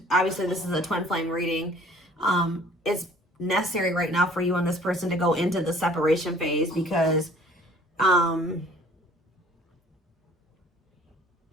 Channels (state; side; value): normal; both; correlation 0.53